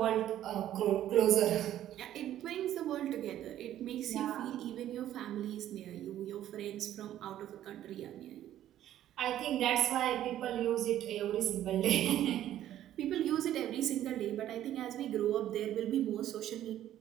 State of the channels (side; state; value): left; quieter; 12.2 dB